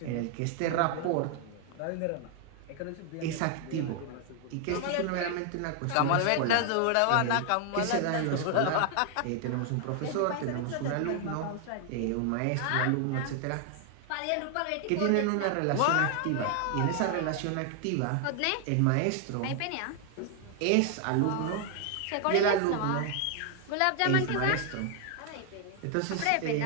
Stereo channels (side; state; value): both; different; correlation 0.00